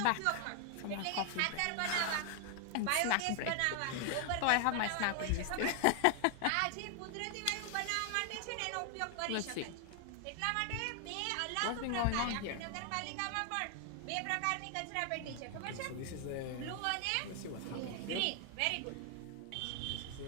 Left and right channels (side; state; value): both; different; correlation 0.00